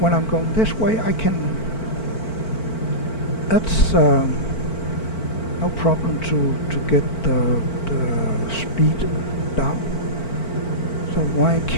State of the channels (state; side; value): late; right; 4.5 ms